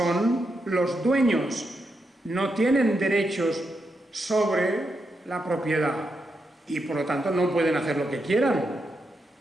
los dueños, no tienen derechos sobre la propiedad y por lo tanto no pueden hacer lo que quieran.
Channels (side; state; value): both; normal; correlation 0.84